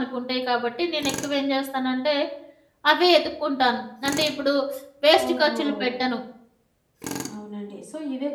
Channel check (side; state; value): both; identical; correlation 1.00